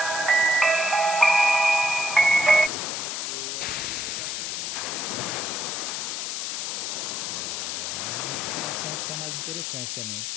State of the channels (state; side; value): noise; left; hiss, 3 dB below the sound